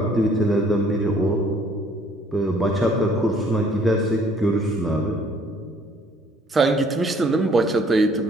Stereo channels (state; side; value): normal; both; correlation 0.60